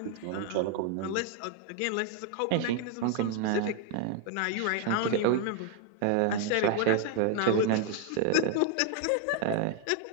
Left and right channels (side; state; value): both; different; correlation 0.00